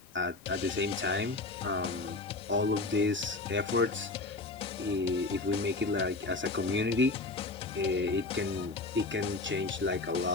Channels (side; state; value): right; quieter; 3.4 dB